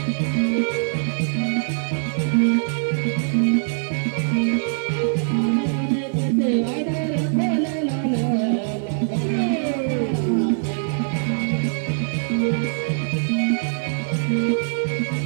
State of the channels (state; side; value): silent; left; 64 dB below the other